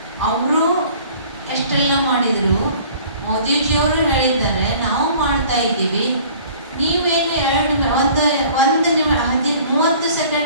ಅವರು ಎಷ್ಟೆಲ್ಲ ಮಾಡಿದರು. ಮೋದಿಜಿಯವರು ಹೇಳಿದ್ದಾರೆ, ನಾವು ಮಾಡ್ತಾ ಇದ್ದೀವಿ, ನೀವೇನು 30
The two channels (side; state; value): both; inverted; correlation -0.50